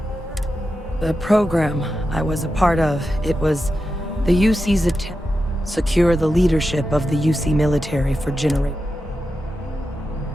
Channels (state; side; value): normal; both; correlation 0.90